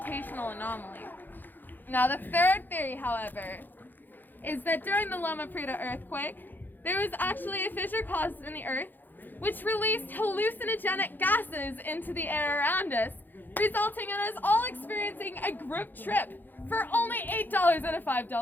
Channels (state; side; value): late; right; 0.089 ms